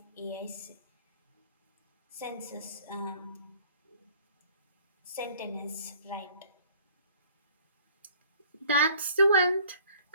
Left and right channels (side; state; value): both; inverted; correlation -0.54